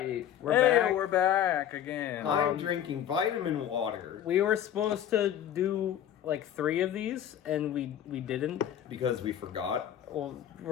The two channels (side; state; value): right; quieter; 10.4 dB